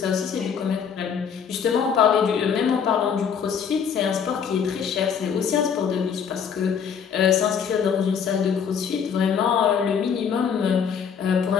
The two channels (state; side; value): quieter; right; 7.2 dB